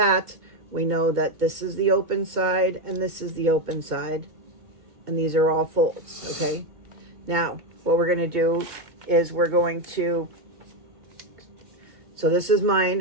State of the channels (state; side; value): late; left; 2.2 ms